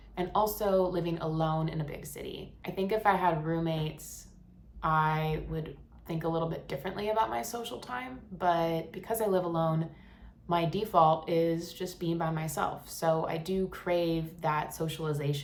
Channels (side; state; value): both; identical; correlation 1.00